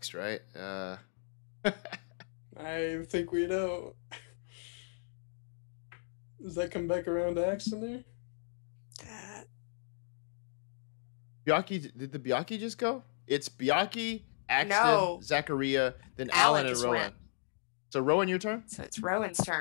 right? I think we know. Does that come back around to Axon there? Byakhee, did the Byakhee just go? It's Byakhee, Axton, Zachariah, then Alan and Rowan. So Rowan, your turn? So it's Rowan's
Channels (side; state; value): right; silent; digital silence